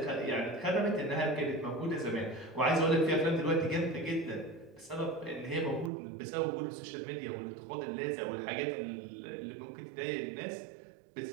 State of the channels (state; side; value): drops out; left; at 5.9 s